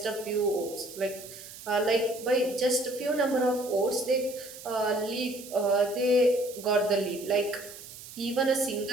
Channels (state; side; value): noise; right; hiss, 15 dB below the sound